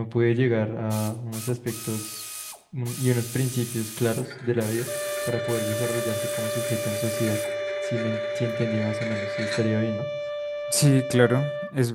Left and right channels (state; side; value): identical; both; correlation 1.00